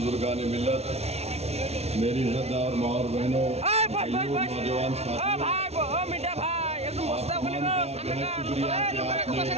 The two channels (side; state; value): left; late; 0.31 ms